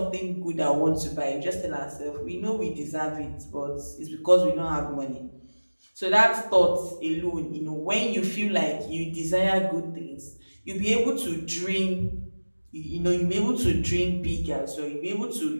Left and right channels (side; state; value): both; inverted; correlation -1.00